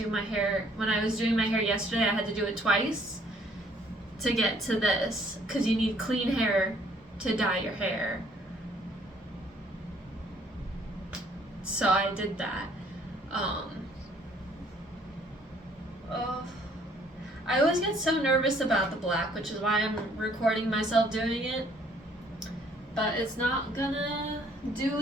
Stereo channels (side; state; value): both; normal; correlation 0.62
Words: my hair, when I was doing my hair yesterday, I had to do it twice to get to this, because you need clean hair to dye your hair. So I did that. I always get so nervous about the black, which is why I'm recording myself doing it. But it's not gonna do